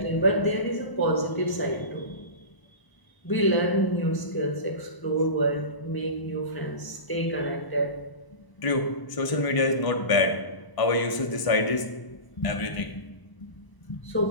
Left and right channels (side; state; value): right; late; 1.0 ms